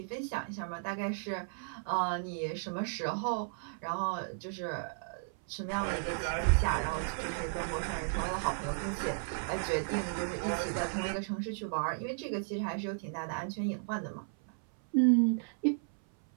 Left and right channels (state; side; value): silent; left; 55 dB below the other